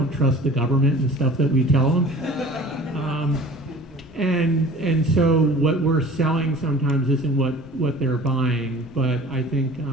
trust the government and stuff that we tell them. And so what we're selling sometimes isn't what they're buying, but I think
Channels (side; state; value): both; normal; correlation 0.43